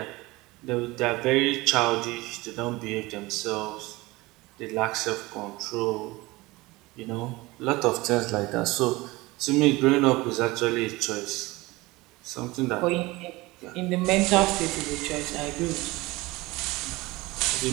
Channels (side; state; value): left; quieter; 21.3 dB